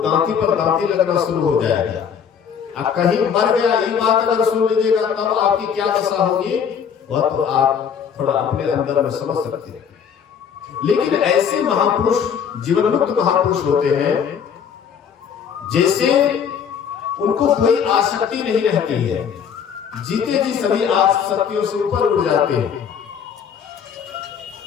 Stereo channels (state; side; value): quieter; right; 7.5 dB